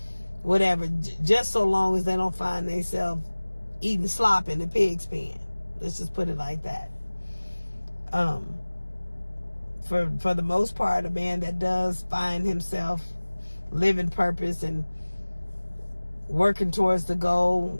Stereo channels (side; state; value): both; inverted; correlation -1.00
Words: whatever, just so long as they don't find themselves eating slop in the pig's pen. Let's just put it like that. For the most part, a man that does find himself living purpose and working towards the